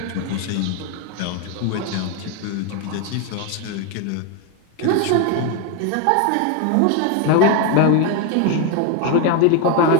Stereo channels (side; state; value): both; different; correlation 0.02